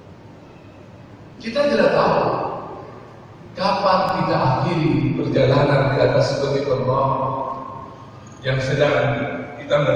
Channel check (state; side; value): identical; both; correlation 1.00